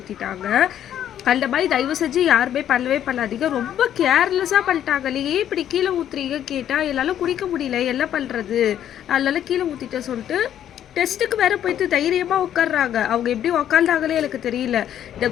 அந்த மாதிரி தயவு செஞ்சு யாருமே பண்ணவே பண்ணாதீங்க. ரொம்ப கேர்லெஸ்ஸாக பண்ணிட்டாங்க. ஏன் இப்படி கீழே ஊற்றுறீங்க கேட்டால் என்னால் குடிக்க முடியல, என்ன பண்ணுறது, அதனால கீழே ஊற்றிட்டேன் சொல்லிட்டு டெஸ்ட்டுக்கு வேறு போயிட்டு தைரியமாக உட்காடுறாங்க. அவங்க எப்படி உக்காந்தாங்களே எனக்கு தெரியல. இந்த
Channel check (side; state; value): right; quieter; 10.6 dB